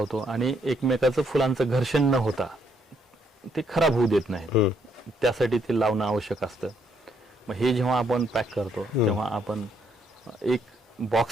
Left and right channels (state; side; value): normal; both; correlation 0.72